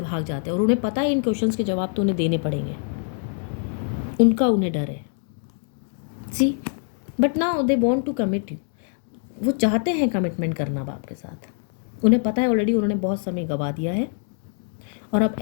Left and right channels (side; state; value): right; silent; 56 dB below the other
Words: भाग जाते हैं, और उन्हें पता है इन क्वेश्चंस के जवाब तो उन्हें देने पड़ेंगे, उन्हें डर है। See, but now they want to commit you, वो चाहते हैं कमिटमेंट करना अब आपके साथ। उन्हें पता है ऑलरेडी उन्होंने बहुत समय गवा दिया है, और अब